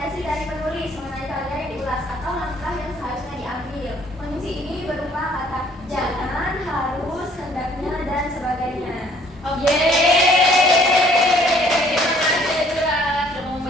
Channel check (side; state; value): both; normal; correlation 0.59